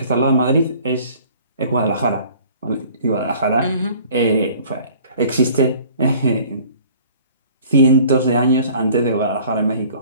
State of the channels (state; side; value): inverted; both; correlation -0.51